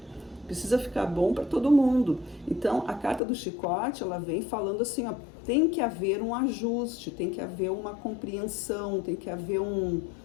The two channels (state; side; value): drops out; right; at 3.2 s